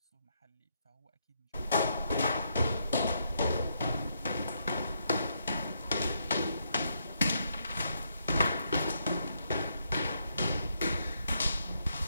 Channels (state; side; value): inverted; both; correlation -0.77